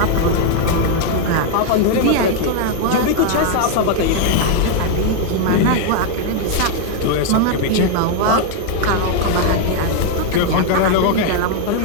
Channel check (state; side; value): different; both; correlation 0.00